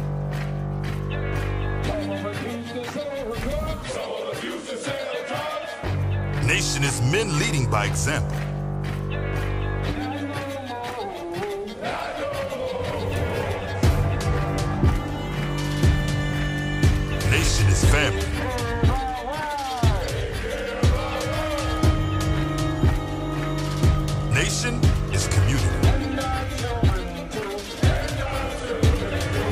Nation is men leading by example. Nation is family. Nation is community.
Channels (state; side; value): identical; both; correlation 1.00